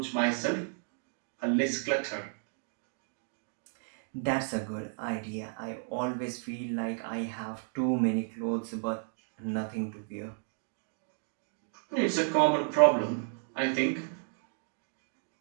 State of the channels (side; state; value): left; silent; 56 dB below the other